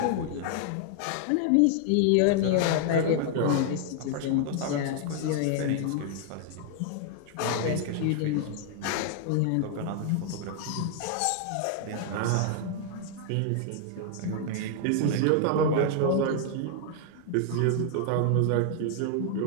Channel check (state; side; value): different; both; correlation 0.00